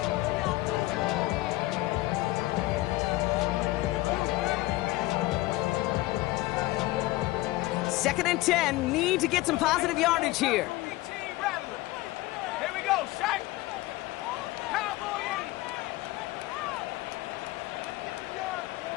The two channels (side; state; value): right; quieter; 18.8 dB